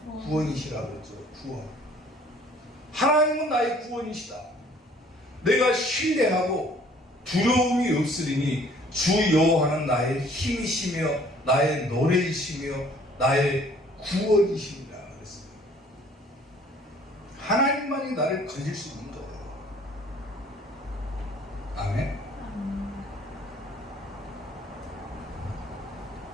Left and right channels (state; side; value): normal; both; correlation 0.56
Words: 구원이시라 그랬죠. 구원. 하나님은 나의 구원이시다. 내가 신뢰하고 두려움이 없으리니 주 여호와는 나의 힘이시며 나의 노래이시며 나의 구원이십니다. 그랬어요. 하나님만이 나를 건질 수 있는 거예요. 아멘.